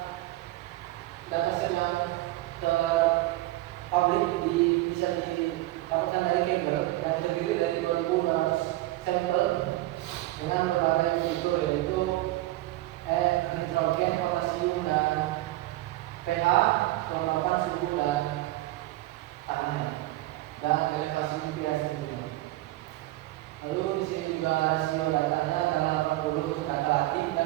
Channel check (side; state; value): left; quieter; 17.4 dB